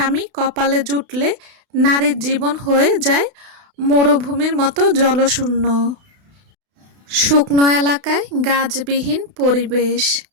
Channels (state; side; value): late; left; 32 ms